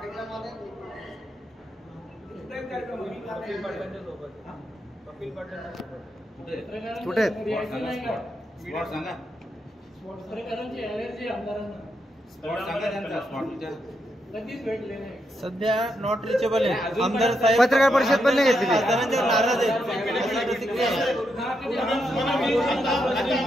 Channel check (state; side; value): normal; both; correlation 0.82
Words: पाटलांच्या सोबत. कपिल पाटलांच्या सोबत कुठे सध्या नॉट रिचेबल आहे. आमदार साहेब पत्रकार परिषद पण नाही घेतली. आमदारांच्या नाराज आहेत.